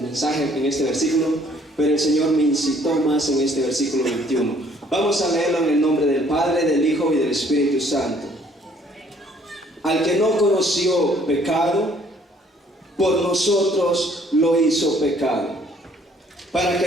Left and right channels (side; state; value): both; normal; correlation 0.61